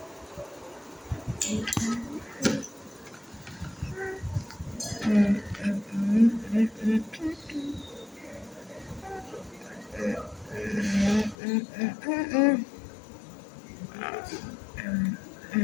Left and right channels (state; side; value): drops out; right; at 11.4 s